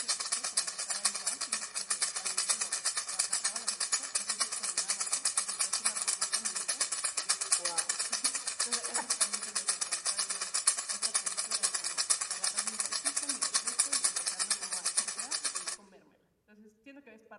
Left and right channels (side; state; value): both; identical; correlation 1.00